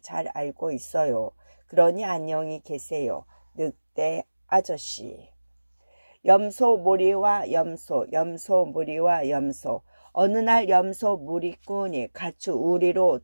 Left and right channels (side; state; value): both; inverted; correlation -1.00